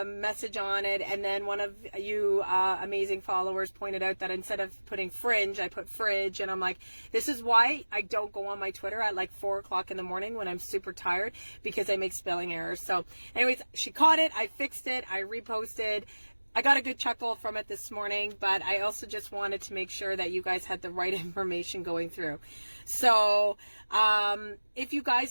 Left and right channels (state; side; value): inverted; both; correlation -1.00